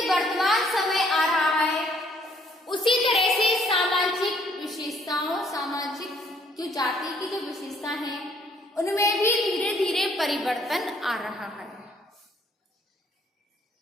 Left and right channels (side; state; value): both; normal; correlation 0.64